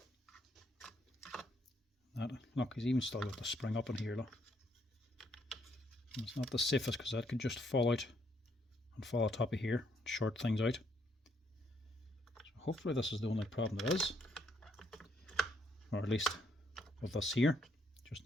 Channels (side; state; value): both; normal; correlation 0.71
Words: That, look, he's even still got the spring up in here, look. And it's not the safest because that could just fall out and fall on top of here, short things out. So hopefully this is the only problem there is. Or at least with this here. Just